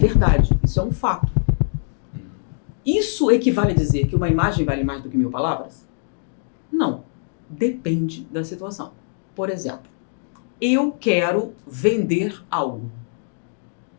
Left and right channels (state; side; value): silent; right; digital silence